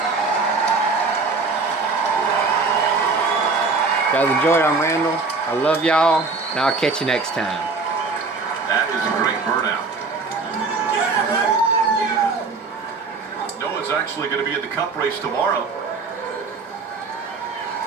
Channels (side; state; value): left; quieter; 4.2 dB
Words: Guys, enjoy it. I'm Randall. I love y'all, and I'll catch you next time. That is a great burnout. Noah's actually going to be in the Cup race tomorrow.